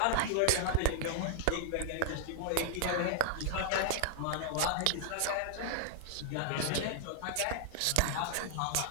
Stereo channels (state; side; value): different; both; correlation 0.00